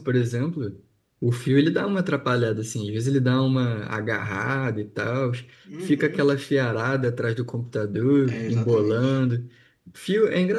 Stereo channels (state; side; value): identical; both; correlation 1.00